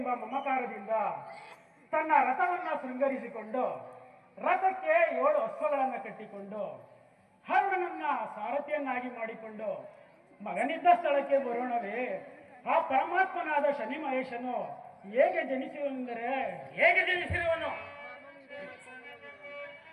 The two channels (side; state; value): both; identical; correlation 1.00